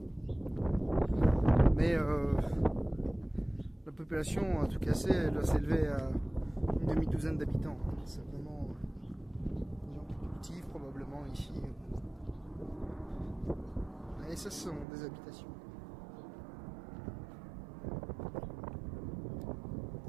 Mais la population, en tout cas, elle doit s'élever à une demi-douzaine d'habitants. C'est vraiment des gens qui cultivent probablement ici. Et ça, ce sont des habitations.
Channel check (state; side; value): drops out; left; at 14.9 s